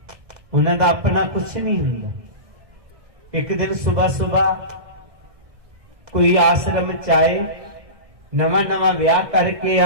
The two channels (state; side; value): late; left; 1.6 ms